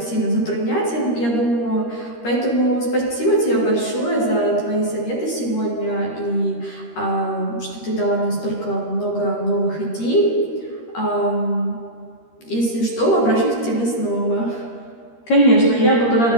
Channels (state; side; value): late; right; 13 ms